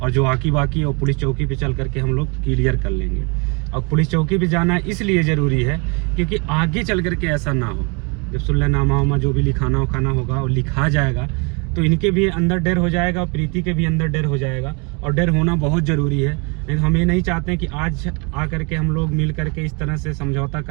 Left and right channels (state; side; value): quieter; left; 32.1 dB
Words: जो बाकी है वो पुलिस चौकी पे चल करके हम लोग क्लियर कर लेंगे। और पुलिस चौकी पे जाना इसलिए ज़रूरी है क्योंकि आगे चल करके ऐसा ना हो। जब सुलहनामा उमा जो भी लिखाना उखाना होगा और लिखा जाएगा तो इनके भी अंदर डर हो जाएगा और प्रीति के भी अंदर डर हो जाएगा, और डर होना बहुत ज़रूरी है। लेकिन हम ये नहीं चाहते हैं कि आज आकर के हम लोग मिल करके इस तरह से समझौता